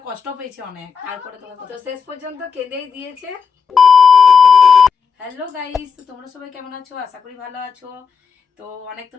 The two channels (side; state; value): right; quieter; 6.0 dB